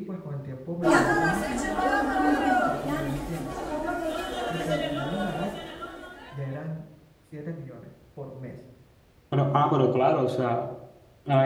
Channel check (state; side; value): identical; both; correlation 1.00